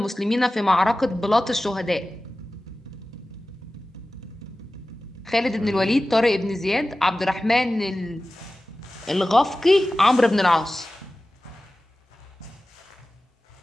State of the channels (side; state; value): both; normal; correlation 0.96